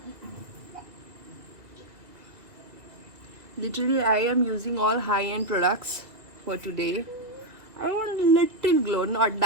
literally I am using all high-end products for today. I want a little glow, not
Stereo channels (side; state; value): left; late; 1.9 ms